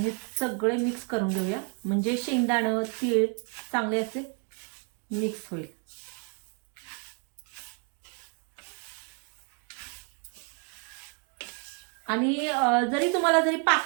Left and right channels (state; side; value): quieter; left; 38.3 dB